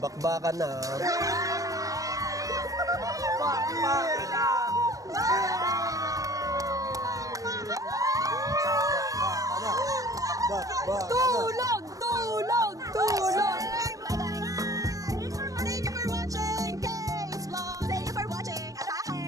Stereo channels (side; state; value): left; late; 0.16 ms